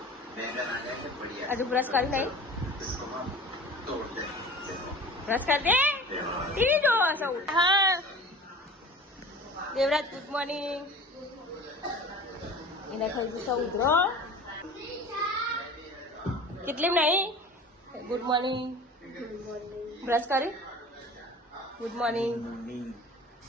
હજુ બ્રશ કરી નહીં? બ્રશ કરી દે. ટીવી જોવો છો? હા. Devraj good morning. એને થઈ ગયું સૌ ઉધરો. કેટલી નહીં? Good morning. બ્રશ કરી? Good morning.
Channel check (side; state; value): both; normal; correlation 0.40